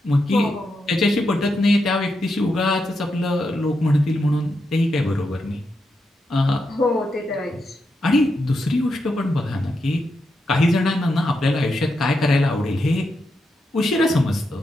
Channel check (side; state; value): both; normal; correlation 0.84